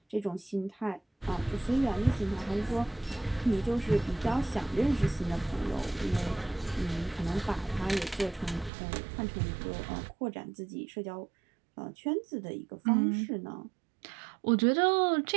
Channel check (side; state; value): left; drops out; at 8.7 s